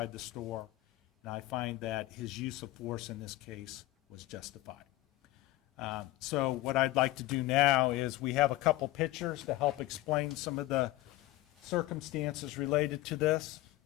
the store, and I find that his use of force in this case was justified. So what I'd like to do now is we have a couple pictures to help explain some of the circumstances related to this.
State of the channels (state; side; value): quieter; right; 17.8 dB